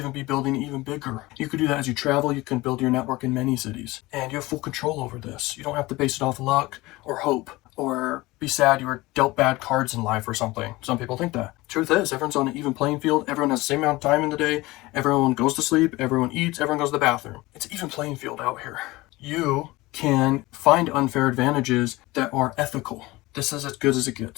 be building even bigger. You could do that as you travel. You can build your network in many cities, and you have full control over this. You don't have to base it off luck or hope or be sad you were dealt bad cards in life or something. Some people think that. Truth is, everyone's on an even playing field. Everyone has the same amount of time in the day. Everyone goes to sleep. Everyone eats. Everyone goes to the bathroom. It's an even playing field out here. You can find unfair advantages that are ethical. This is as good as it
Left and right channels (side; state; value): right; quieter; 20.5 dB